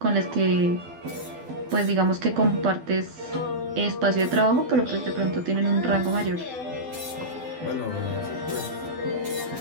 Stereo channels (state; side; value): late; left; 12 ms